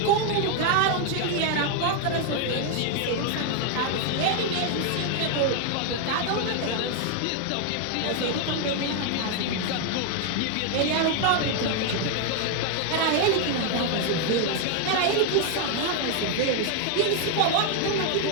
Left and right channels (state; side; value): different; both; correlation 0.00